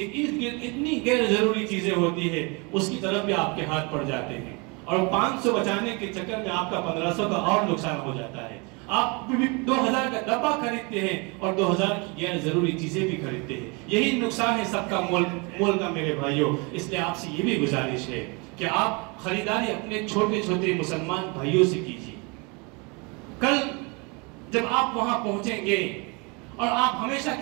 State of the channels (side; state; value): left; quieter; 30.1 dB